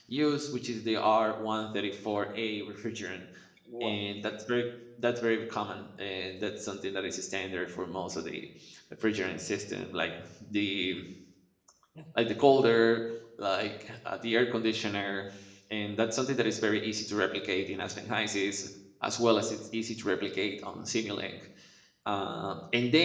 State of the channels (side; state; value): both; identical; correlation 1.00